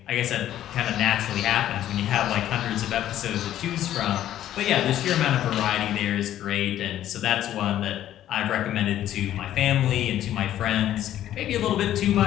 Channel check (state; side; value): quieter; right; 12.1 dB